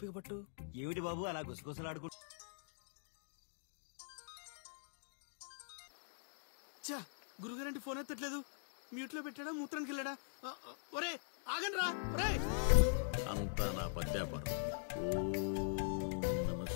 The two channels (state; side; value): silent; right; digital silence